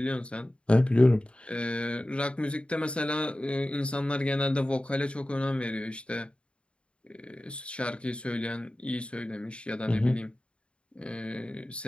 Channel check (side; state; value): right; late; 0.057 ms